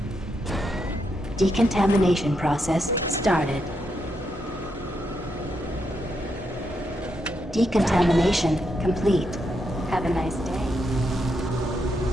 Decontamination process started. Decontamination complete. Have a nice day.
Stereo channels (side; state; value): both; normal; correlation 0.81